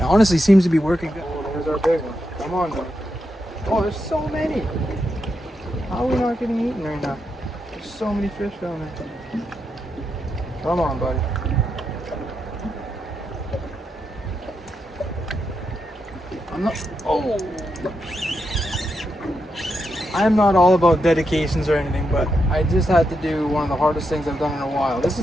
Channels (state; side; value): normal; both; correlation 0.84